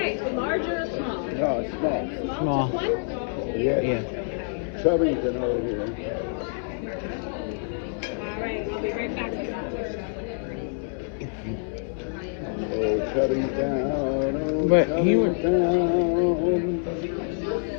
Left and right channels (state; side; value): silent; right; 59 dB below the other